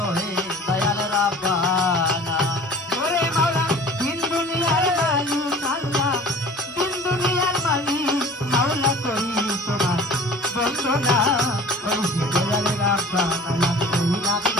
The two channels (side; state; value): both; normal; correlation 0.44